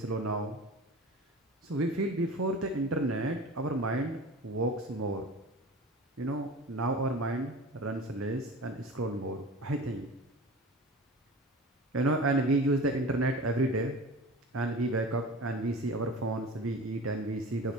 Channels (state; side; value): normal; both; correlation 0.36